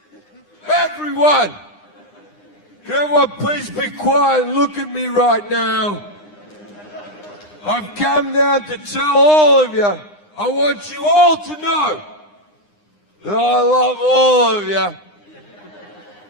can everyone please be quiet and look at me right now? I've come down to tell all of you, I want you all to know that I love all of you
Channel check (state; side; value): late; right; 9.8 ms